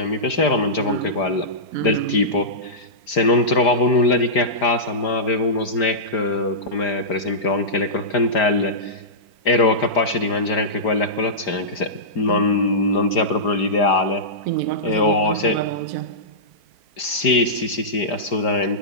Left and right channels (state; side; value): late; right; 5.0 ms